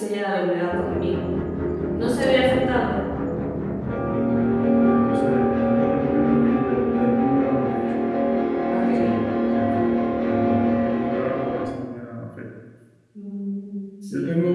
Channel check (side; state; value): both; identical; correlation 1.00